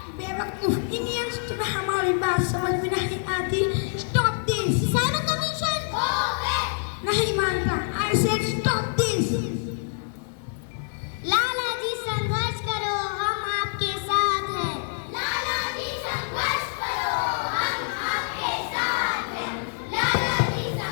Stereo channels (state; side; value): silent; right; digital silence